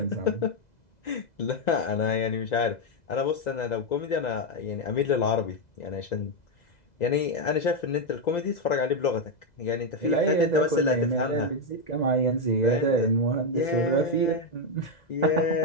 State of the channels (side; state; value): right; late; 2.0 ms